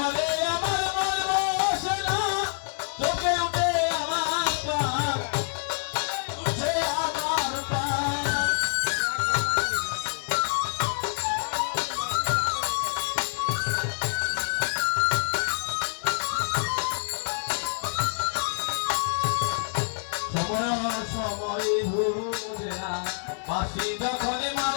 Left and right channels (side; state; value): right; silent; digital silence